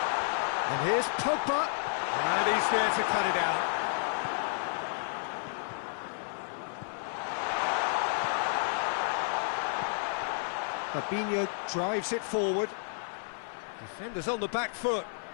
And here's Pogba. And he's there to cut it out. Fabinho drives it forward. Defenders on the back foot.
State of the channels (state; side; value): silent; right; 57 dB below the other